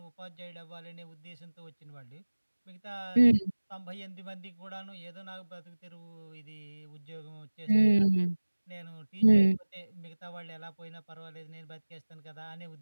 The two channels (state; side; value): inverted; both; correlation -1.00